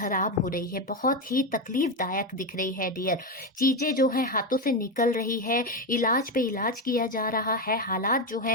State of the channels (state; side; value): normal; both; correlation 0.12